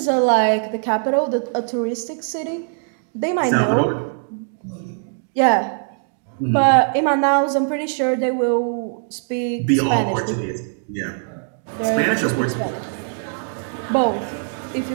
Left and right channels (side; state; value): left; silent; digital silence